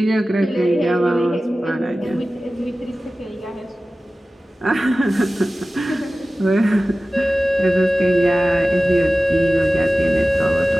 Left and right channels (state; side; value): normal; both; correlation 0.96